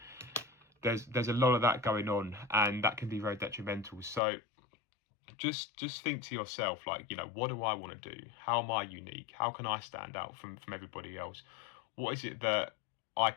there's a lot of that going on, and that can be very detrimental. So just think to yourself, like, you know, what do I want to do? How am I unique? How can I stand out from everybody else? What is it that I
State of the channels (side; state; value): right; drops out; at 4.2 s